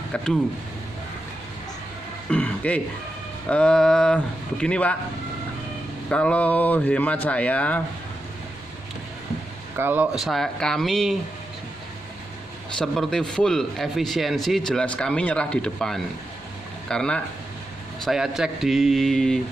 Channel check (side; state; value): left; noise; rumble, 30 dB below the sound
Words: Kedu. Oke. Begini Pak, kalau hemat saya, kami seperti full efisiensi, jelas kami nyerah di depan. Karena saya cek di